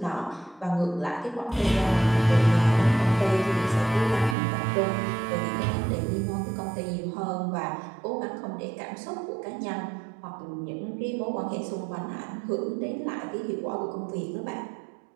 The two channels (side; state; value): left; drops out; at 4.4 s